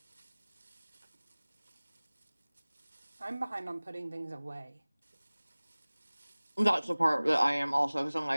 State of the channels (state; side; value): inverted; both; correlation -1.00